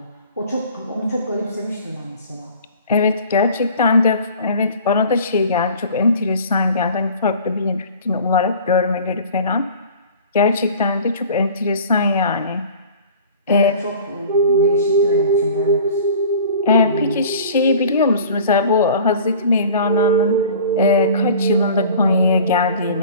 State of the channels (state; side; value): inverted; both; correlation -0.44